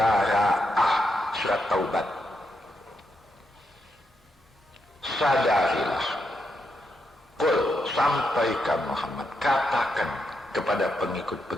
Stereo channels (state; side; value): normal; both; correlation 0.83